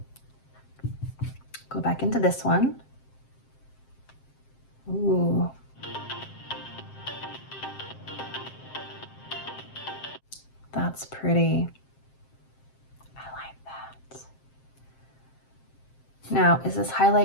go back into this one. Ooh. That's pretty. I like that. Now, is this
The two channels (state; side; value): late; right; 7.6 ms